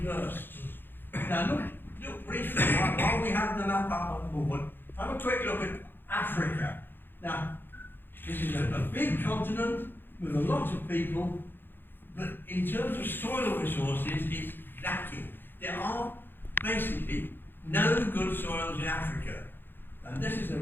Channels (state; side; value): late; right; 0.099 ms